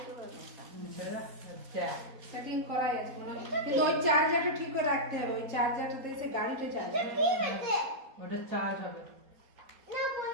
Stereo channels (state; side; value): late; left; 4.2 ms